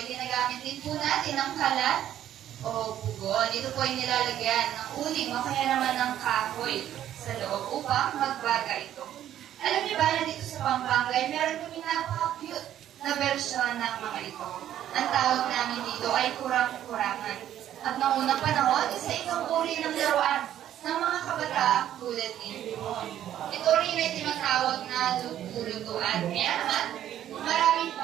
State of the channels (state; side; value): quieter; left; 11.4 dB